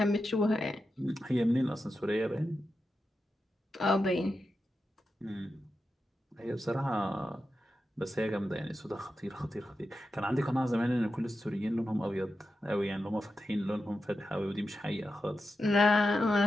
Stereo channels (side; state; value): both; normal; correlation 0.89